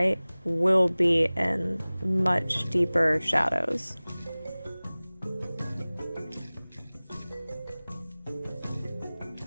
will be in much deeper shadows.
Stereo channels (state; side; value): inverted; both; correlation -0.99